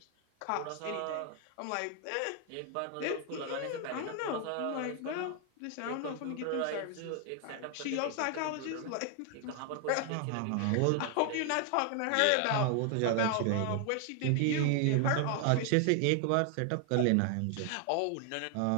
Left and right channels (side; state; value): both; different; correlation 0.00